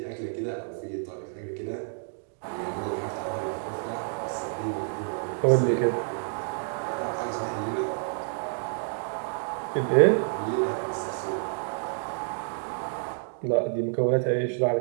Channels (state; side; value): silent; left; digital silence